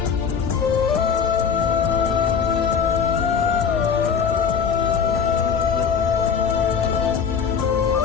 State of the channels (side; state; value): right; quieter; 6.6 dB